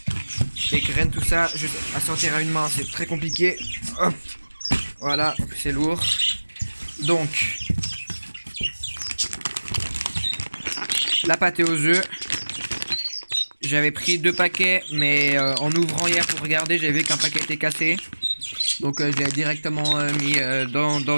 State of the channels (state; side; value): inverted; both; correlation -1.00